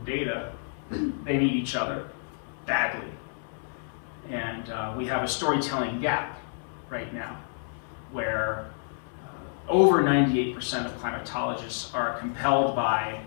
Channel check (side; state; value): right; silent; digital silence